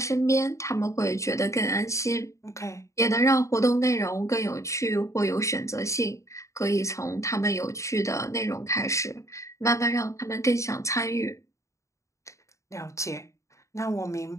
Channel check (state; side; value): late; right; 0.15 ms